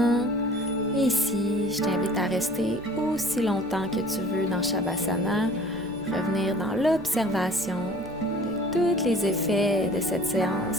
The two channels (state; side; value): normal; both; correlation 0.48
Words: Et ici, je t'invite à rester aussi longtemps que tu veux dans Shavasana, revenir dans l'observation de tous les effets de cette